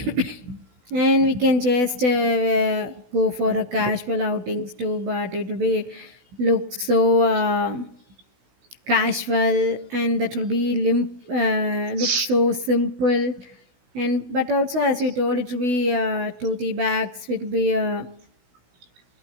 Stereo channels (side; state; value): left; late; 16 ms